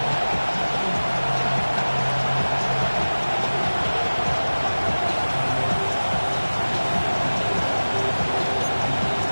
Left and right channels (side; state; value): both; inverted; correlation -1.00